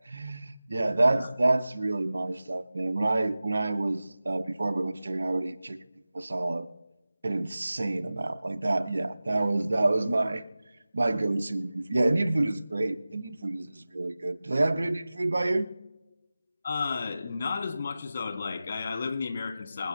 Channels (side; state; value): both; inverted; correlation -0.96